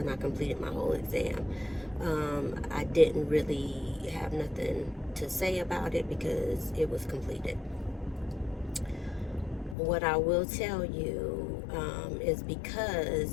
I completed my whole exam. I didn't really have nothing to say about it because it was completed. What I will tell you is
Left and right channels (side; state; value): right; drops out; at 9.8 s